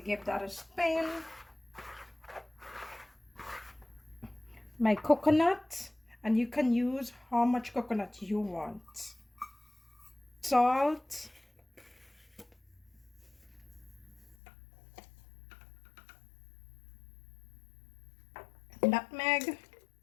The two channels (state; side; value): drops out; right; at 14.4 s